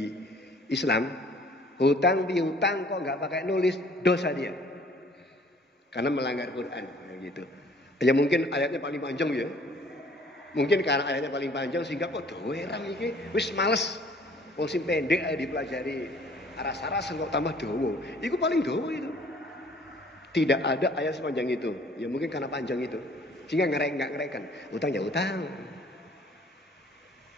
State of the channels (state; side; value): normal; both; correlation 0.55